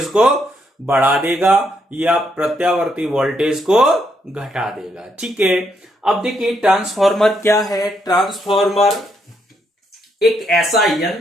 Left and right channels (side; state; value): both; normal; correlation 0.76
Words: को बढ़ा देगा या प्रत्यावर्ती वोल्टेज को घटा देगा। ठीक है, अब देखिए ट्रांसफॉर्मर क्या है। ट्रांसफॉर्मर एक ऐसा